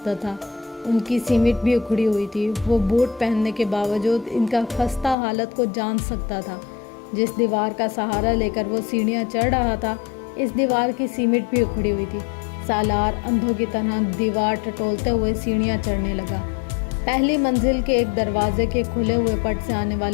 تھا۔ ان کی سیمٹ بھی اکھڑی ہوئی تھی۔ وہ بوٹ پہننے کے باوجود ان کا خستہ حالت کو جان سکتا تھا۔ جس دیوار کا سہارا لے کر وہ سیڑھیاں چڑھ رہا تھا، اس دیوار کی سیمٹ بھی اکھڑی ہوئی تھی۔ سالار اندھوں کی طرح دیوار ٹٹولتے ہوئے سیڑھیاں چڑھنے لگا۔ پہلی منزل کے ایک دروازے کے کھلے ہوئے پٹ سے آنے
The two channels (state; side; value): drops out; right; at 5.2 s